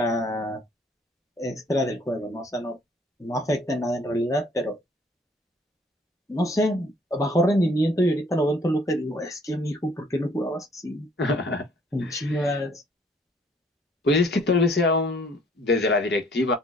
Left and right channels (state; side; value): normal; both; correlation 0.60